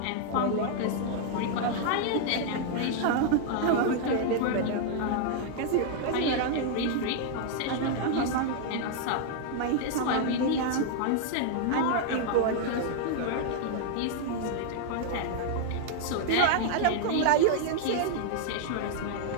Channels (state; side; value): different; both; correlation 0.00